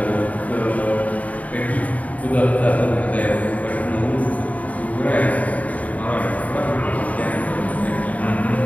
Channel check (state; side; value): late; right; 0.070 ms